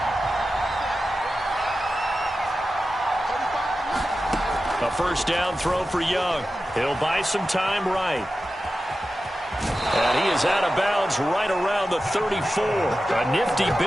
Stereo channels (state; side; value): normal; both; correlation 0.93